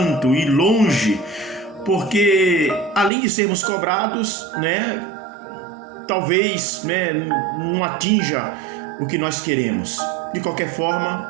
ir longe, porque além de sermos cobrados, né? Talvez, não atinja o que nós queremos. De qualquer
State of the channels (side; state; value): left; drops out; at 3.1 s